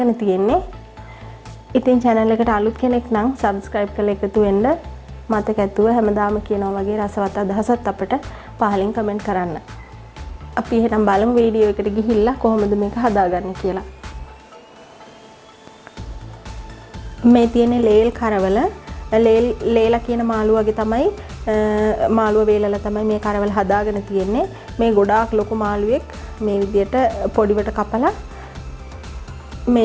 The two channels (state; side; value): identical; both; correlation 1.00